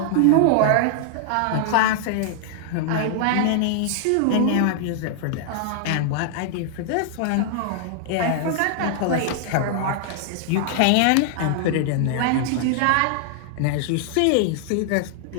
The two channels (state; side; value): different; both; correlation 0.00